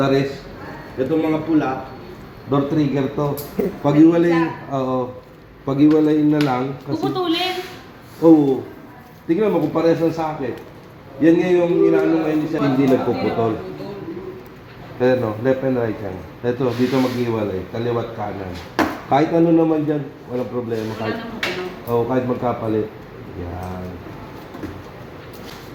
rest, itong mga pula, door trigger to. Pag-iwalayin na lang. Puputulin. Oo. Tingnan mo kung parehas ng socket. Yan nga yung inaano ngayon siya, hindi nagpuputol. Ayan o, left and right yan. Ito, dito mag-iwalay, kaliwat kanan. Kahit ano naman dyan, walang problema. Kahit magkapalit. Yan.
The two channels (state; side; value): identical; both; correlation 1.00